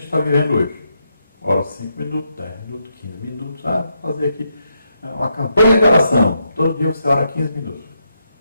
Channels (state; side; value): inverted; both; correlation -0.80